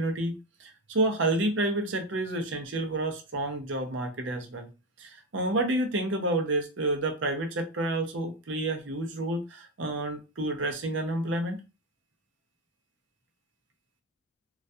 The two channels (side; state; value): both; normal; correlation 0.13